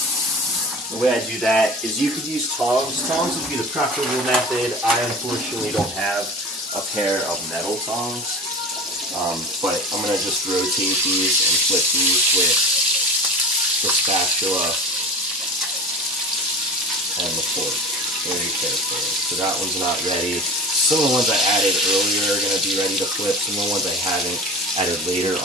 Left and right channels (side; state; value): both; normal; correlation 0.34